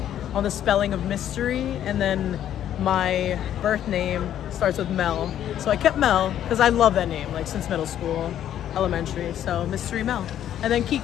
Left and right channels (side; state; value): right; quieter; 10.8 dB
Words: on the spelling of mystery, and then my birth name starts with Mel. So I kept Mel because I love that name, like since middle school, elementary. So Mystery Mel. And then